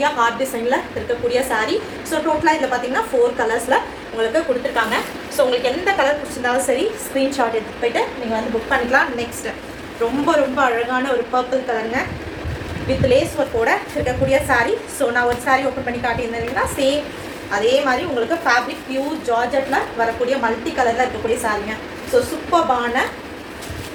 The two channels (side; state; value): both; identical; correlation 1.00